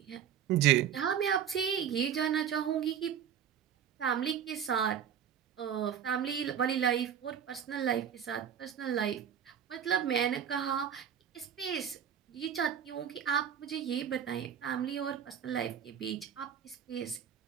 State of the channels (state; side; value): quieter; left; 8.8 dB